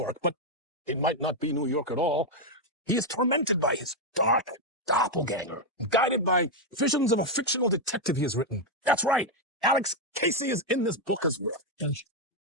but it might not be New York at all. He is tormented by his dark doppelganger, guided by visions of a fictional detective he has written. That's right. Alex Casey is in this book as well.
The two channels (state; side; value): normal; both; correlation 0.02